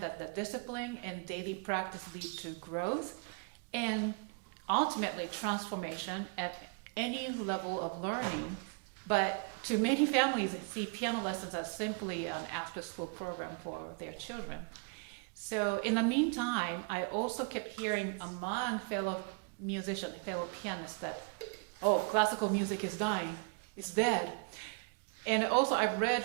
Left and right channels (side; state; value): left; quieter; 34.5 dB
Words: that the discipline and daily practice lead to growth and ultimately transformation at any level of learning. But to many families, they see piano lessons as simply an after-school program for their children. So in the meantime, I also kept hearing among fellow musicians, fellow pianists that, oh, classical music is dying, it's dead. And also I've read